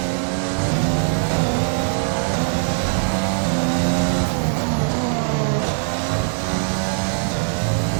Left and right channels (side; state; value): left; silent; 65 dB below the other